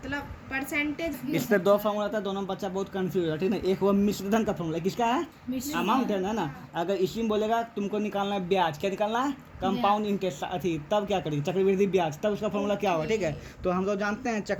परसेंटेज इस पे 2 फॉर्मूला था, दोनों में बच्चा बहुत कंफ्यूज है, ठीक है। एक वो मिश्रधन का फॉर्मूला, किसका है, अमाउंट है ना। अगर इसी में बोलेगा तुमको निकालना है ब्याज, क्या निकालना है, कंपाउंड इंटरेस्ट, अथी, तब क्या करेगी, चक्रवृद्धि ब्याज, तब उसका फॉर्मूला क्या होगा, ठीक है। तो हम लोग जानते हैं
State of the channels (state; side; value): identical; both; correlation 1.00